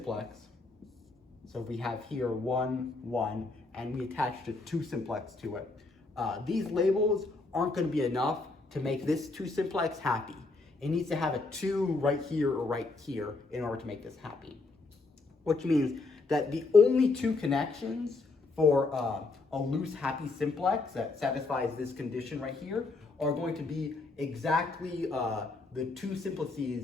So we have here 1, 1, and we attached a 2 simplex to it. These labels aren't going to be enough to make this 2 simplex happy. It needs to have a 2 right here or right here in order to make this happy. Which means that the only 2 connections for a loose happy simplex that satisfies this condition right here are going to be exactly the 2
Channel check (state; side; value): quieter; right; 3.6 dB